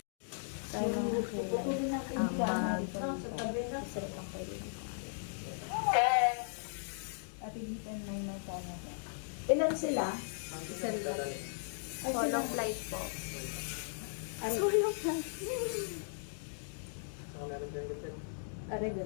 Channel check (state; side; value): silent; right; digital silence